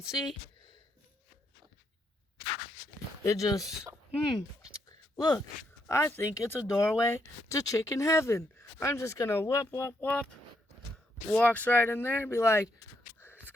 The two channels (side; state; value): both; normal; correlation 0.77